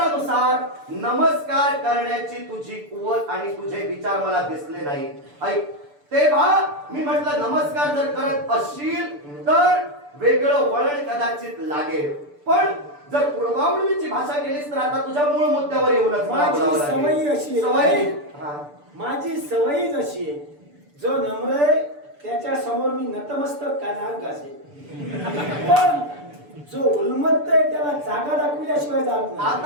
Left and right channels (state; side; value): late; left; 6.9 ms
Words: नमस्कार करण्याची तुझी कुवत आणि तुझे विचार मला दिसले नाही. ऐक, तेव्हा मी म्हटलं नमस्कार जर करत असशील तर वेगळं वळण कदाचित लागेल, पण जर पूर्वावळीची भाषा केलीस तर आता तुझ्या मूळ मुद्द्यावर येऊनच माझी सवय अशी आहे. माझी सवयच अशी आहे, जो नम्र आहे त्याच्या समोर मी नतमस्तक कानाक असेल, पण जो उन्मत्त आहे त्याला जागा दाखवल्याशिवाय जात नाही.